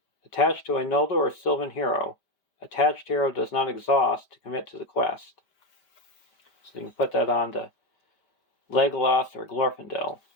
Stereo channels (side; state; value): right; late; 5.1 ms